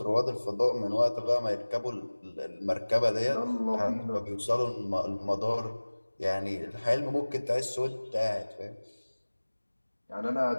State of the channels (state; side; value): inverted; both; correlation -1.00